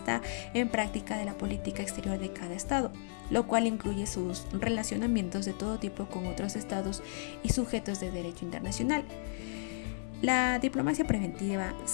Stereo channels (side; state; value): right; silent; 55 dB below the other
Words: en práctica de la política exterior de cada estado, lo cual incluye sus relacionamientos de todo tipo con otros estados y sujetos de derecho internacional. La diplomacia preventiva